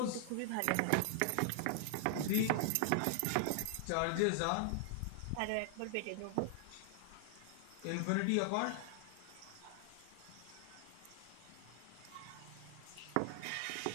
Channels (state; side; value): different; both; correlation -0.01